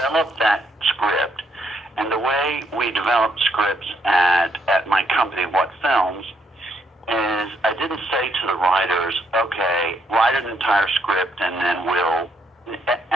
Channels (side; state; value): both; normal; correlation 0.74